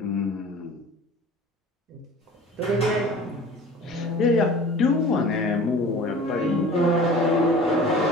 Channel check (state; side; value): normal; both; correlation 0.42